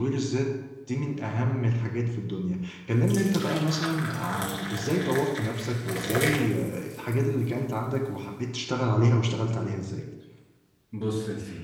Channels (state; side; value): identical; both; correlation 1.00